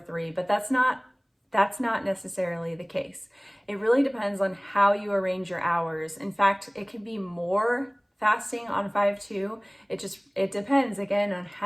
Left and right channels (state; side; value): identical; both; correlation 1.00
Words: but that's not necessarily the case. It really depends on how you arrange your hours. In fact, it can be more fasting on 5-2. It depends again on